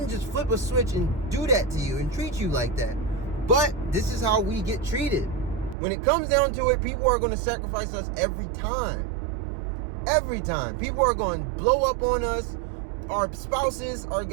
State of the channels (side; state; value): left; drops out; at 5.8 s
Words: just flip a switch and do that to you and treat you like that. But this is how we get treated. When it comes down to it, people are going to sacrifice us every time. Every time. People are going to blow up on us. Our spouses are